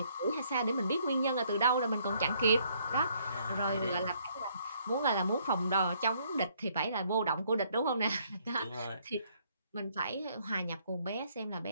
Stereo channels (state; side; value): inverted; both; correlation -0.67